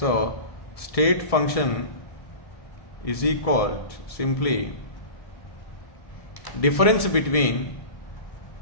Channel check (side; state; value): right; late; 1.7 ms